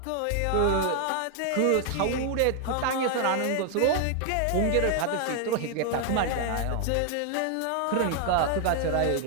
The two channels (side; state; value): both; different; correlation 0.00